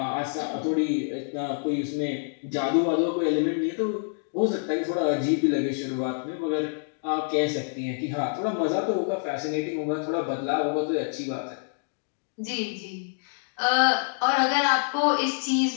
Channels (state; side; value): silent; right; digital silence